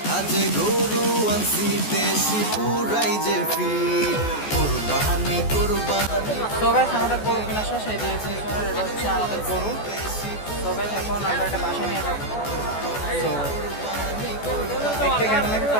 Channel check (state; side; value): late; right; 14 ms